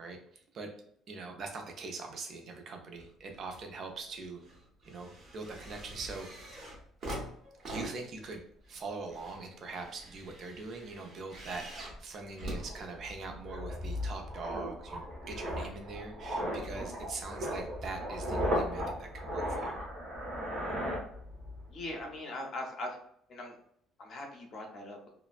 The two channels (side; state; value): both; normal; correlation 0.63